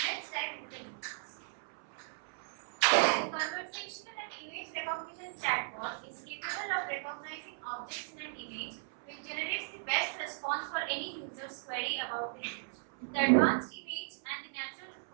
let's dive into the details. The conversational and image recognition chatbot is capable of recognizing objects in an image which generates the best response for any user's query about the image. The advanced image and the natural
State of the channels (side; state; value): left; silent; 54 dB below the other